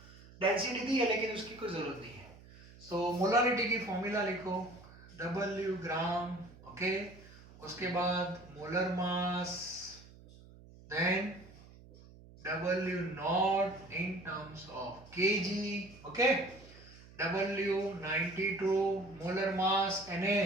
डेंसिटी दी है लेकिन उसकी कोई जरूरत नहीं है। सो मोलारिटी की फॉर्मूला लिखो, W ग्राम, ओके, उसके बाद molar mass, then W not in terms of kg, okay, W 92, molar mass Na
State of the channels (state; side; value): noise; right; hum, 21 dB below the sound